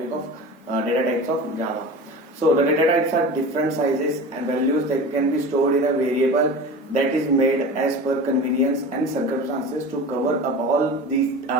of data types of Java. So the data types are different sizes and values that can be stored in a variable that is made as per convenience and circumstances to cover up all these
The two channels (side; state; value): both; normal; correlation 0.33